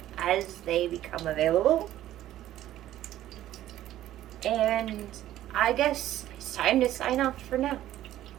as they become available. And I guess it's time to sign off for now.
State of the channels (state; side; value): quieter; left; 13.4 dB